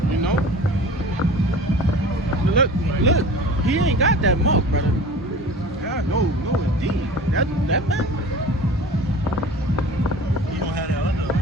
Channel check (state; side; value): normal; both; correlation 0.40